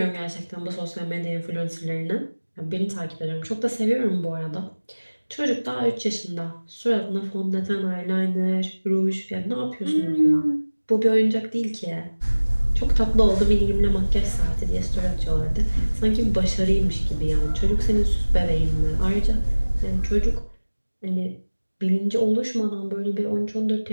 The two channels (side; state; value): both; inverted; correlation -1.00